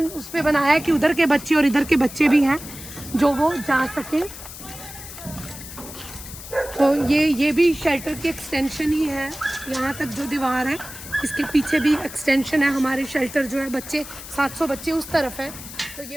उस पर बनाया है कि उधर के बच्चे और इधर के बच्चे भी हैं जो वो जा सकें। तो ये भी शेल्टर की एक्सटेंशन ही है, यहाँ तक जो दीवार है इसके पीछे भी एक्सटेंशन है। हमारे शेल्टर जो है बच्चे 700 बच्चे उस तरफ है, तो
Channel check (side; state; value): left; noise; hiss, 13 dB below the sound